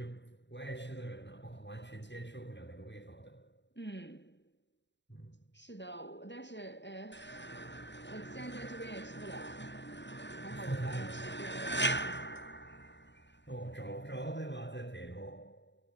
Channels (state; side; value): late; right; 0.52 ms